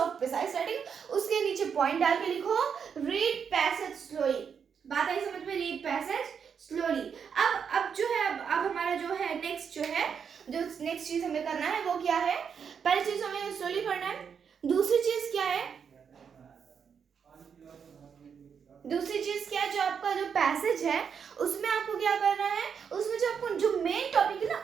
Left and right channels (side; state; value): left; quieter; 6.9 dB